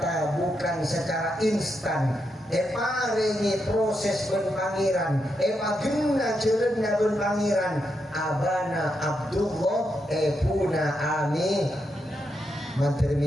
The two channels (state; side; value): normal; both; correlation 0.83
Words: bukan secara instan paringi proses ben pangeran pagena jelenna ben pangeran abana Abdullah puna amin mantir